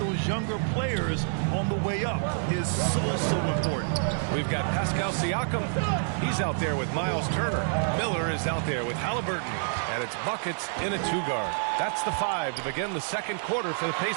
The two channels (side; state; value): left; silent; digital silence